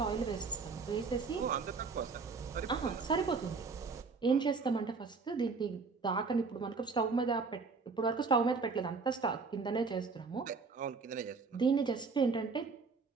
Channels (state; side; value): quieter; left; 4.7 dB